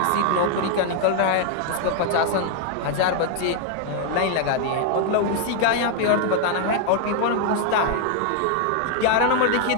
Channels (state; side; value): different; both; correlation 0.00